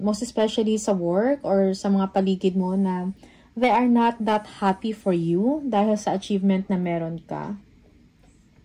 most especially sa work or sa mga paligid mo na they are not that happy for you dahil sa achievement na meron ka.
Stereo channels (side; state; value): both; identical; correlation 1.00